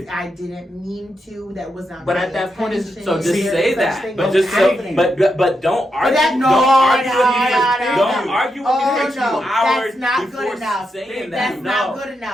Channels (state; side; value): normal; both; correlation 0.84